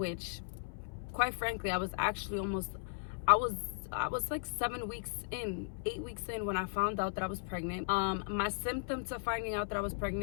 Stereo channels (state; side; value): silent; right; 53 dB below the other